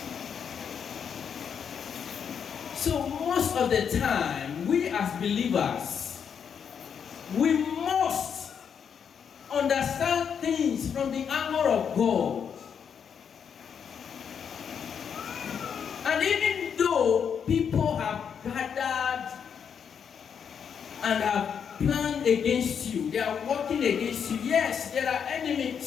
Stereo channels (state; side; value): quieter; right; 7.3 dB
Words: So most of the time, we as believers, we must understand things from the angle of God. And even though people have gathered and have planned against you, they are working against you, yes, there are